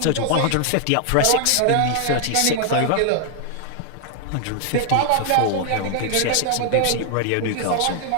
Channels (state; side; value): different; both; correlation 0.00